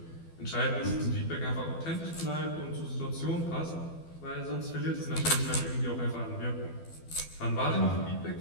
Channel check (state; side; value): late; right; 12 ms